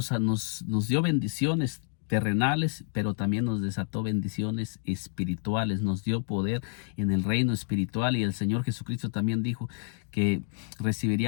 dio bendiciones terrenales, pero también nos desató bendiciones espirituales, nos dio poder en el reino espiritual, y el Señor Jesucristo también dijo que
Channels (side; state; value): right; silent; 59 dB below the other